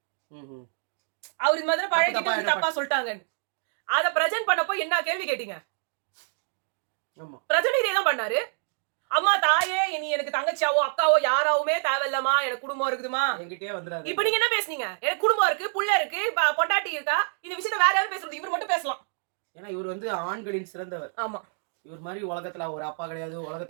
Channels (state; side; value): silent; left; 60 dB below the other